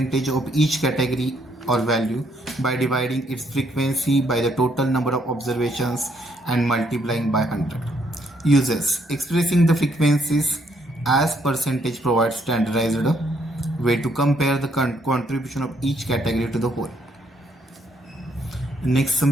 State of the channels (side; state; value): both; normal; correlation 0.71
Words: of each category or value by dividing its frequency by the total number of observations and multiplying by 100. Uses: expressing the frequencies as percentage provides standardized way to compare the contribution of each category to the whole. Next, some